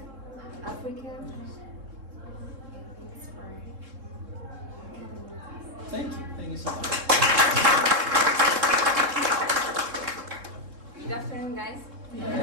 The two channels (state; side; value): late; left; 3.7 ms